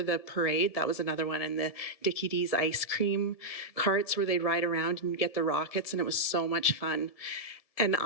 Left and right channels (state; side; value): late; right; 1.7 ms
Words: the parade. That was another one, and the Dickie D's ice cream carts where they'd ride around and get the rockets, and it was so much fun. And